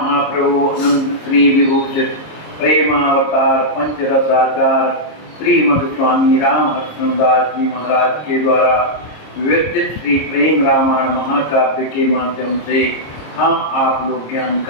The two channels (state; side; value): late; right; 26 ms